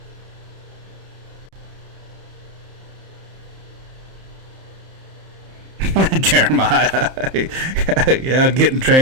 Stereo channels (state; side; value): late; left; 31 ms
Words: Jeremiah, yeah, getting